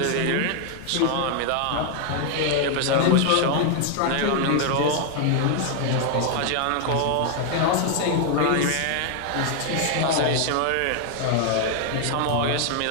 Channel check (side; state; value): both; different; correlation 0.00